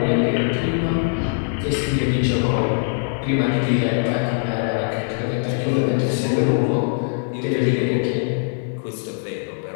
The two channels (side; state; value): right; silent; digital silence